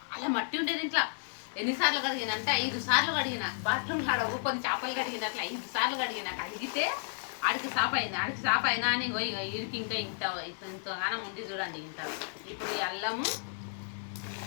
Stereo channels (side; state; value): right; silent; digital silence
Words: మట్టి ఉండేది ఇంట్లో. ఎన్నిసార్లు కడిగిన అంటే 5 సార్లు కడిగిన. బాత్రూమ్ కాడ కొన్ని చేపలు కడిగినట్లు 5 సార్లు కడిగిన. కడిగితే ఆడికి సాఫ్ అయినా అని ఇడికి ఇంకా ఇంతగానం ఉంది చూడండి. ఇంత ఇప్పుడు ఈ అల్లము